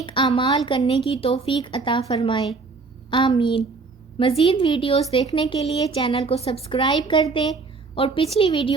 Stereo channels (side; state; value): left; quieter; 4.2 dB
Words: اعمال کرنے کی توفیق عطا فرمائے۔ آمین۔ مزید ویڈیوز دیکھنے کے لیے چینل کو سبسکرائب کر دیں اور پچھلی